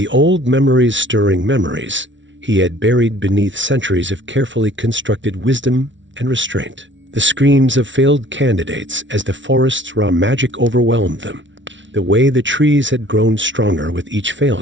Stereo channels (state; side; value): late; left; 0.55 ms